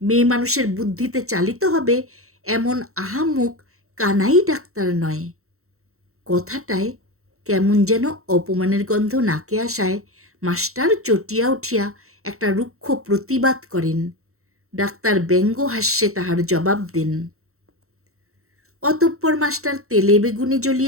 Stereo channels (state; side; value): late; left; 0.63 ms